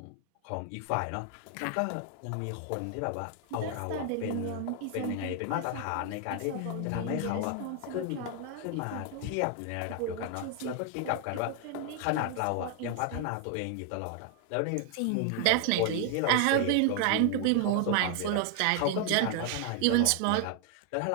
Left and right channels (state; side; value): different; both; correlation 0.00